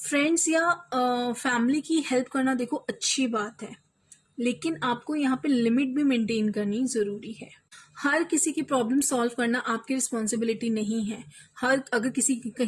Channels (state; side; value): identical; both; correlation 1.00